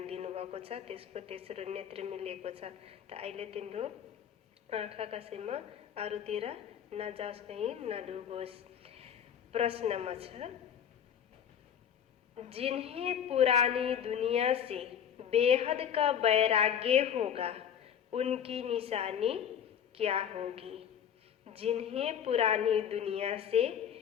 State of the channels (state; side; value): quieter; right; 8.8 dB